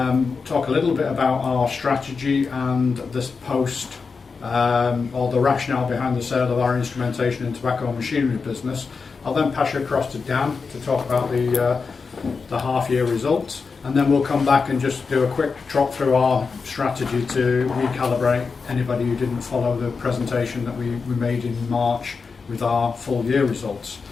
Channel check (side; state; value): right; quieter; 4.9 dB